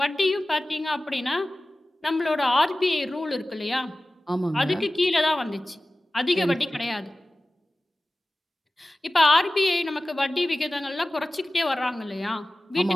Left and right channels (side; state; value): both; normal; correlation 0.96